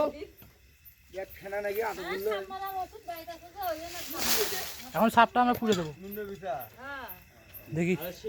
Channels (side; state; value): both; identical; correlation 1.00